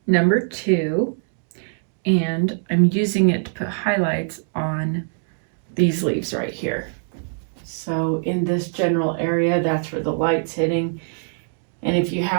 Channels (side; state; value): left; silent; digital silence